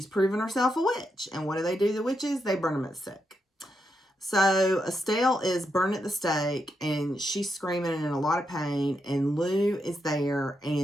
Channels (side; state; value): both; normal; correlation 0.83